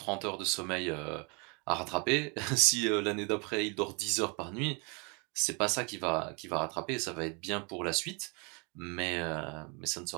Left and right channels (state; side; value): quieter; left; 32.3 dB